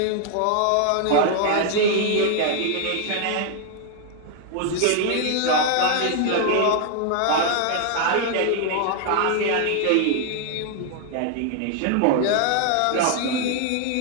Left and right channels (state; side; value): different; both; correlation 0.00